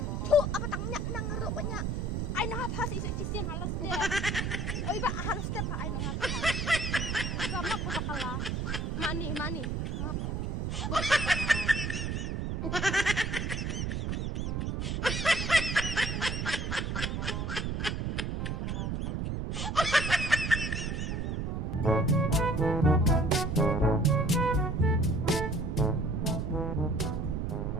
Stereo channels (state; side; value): noise; right; rumble, 1 dB below the sound